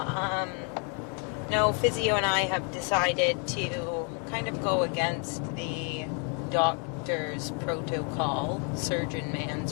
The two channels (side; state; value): right; quieter; 39.2 dB